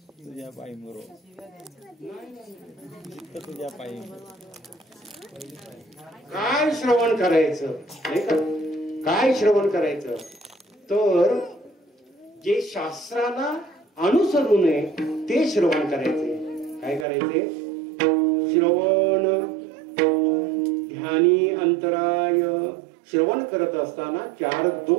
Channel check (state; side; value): drops out; left; at 17.1 s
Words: तुझ्या पायी मरो, तुझ्या पायी. काय श्रवण करायचं नाही का? काय श्रवण करायचं तर जे शास्त्राला अनुसरून आहे ते श्रवण करायचे. काय करायचे? श्रवण ध्यानी अंतराय. श्रवण करत असताना 4